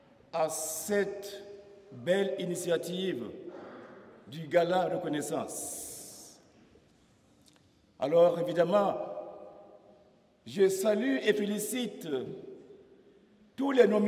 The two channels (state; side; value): identical; both; correlation 1.00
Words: à cette belle initiative du Gala Reconnaissance. Alors, évidemment, je salue et félicite tous les